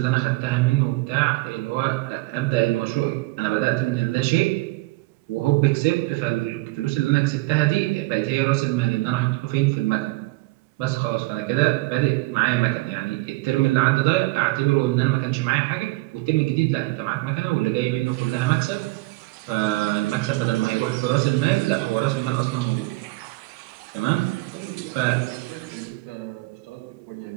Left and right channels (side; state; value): left; quieter; 21.5 dB